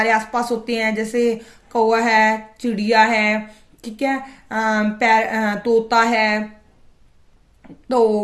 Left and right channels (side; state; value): both; identical; correlation 1.00